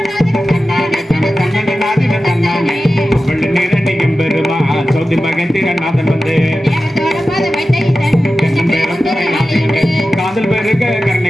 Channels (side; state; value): both; normal; correlation 0.94